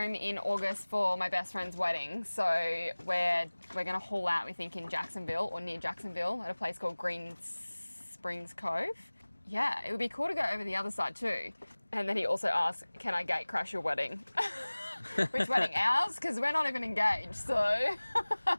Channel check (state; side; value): inverted; both; correlation -1.00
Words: in August for my best friend's wedding. So we're going to haul out, we think, in Jacksonville or near Jacksonville at a place called Green Springs Cove. Yeah, it would be cool to go over the other side too. And then he also asked, can I gate crash your wedding? Which wedding? Ours? Because we're not even engaged, so...